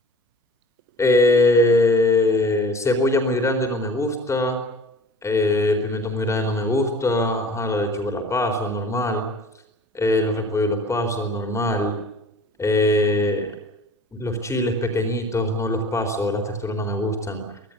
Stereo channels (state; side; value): normal; both; correlation 0.43